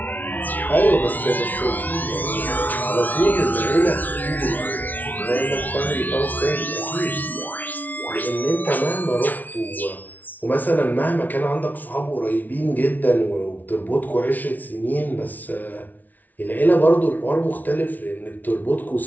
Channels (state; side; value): late; right; 0.079 ms